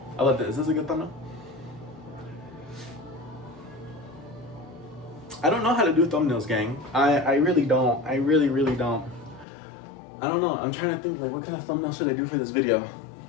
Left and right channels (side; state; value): right; drops out; at 9.5 s